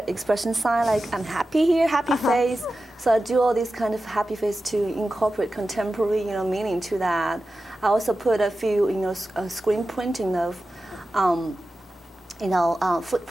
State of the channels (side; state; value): both; normal; correlation 0.93